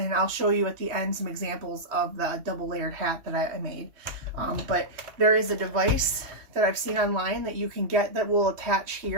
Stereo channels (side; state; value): left; late; 3.1 ms